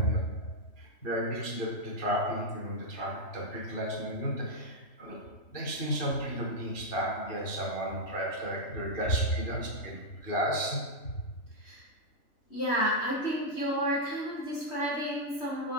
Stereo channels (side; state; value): right; late; 3.1 ms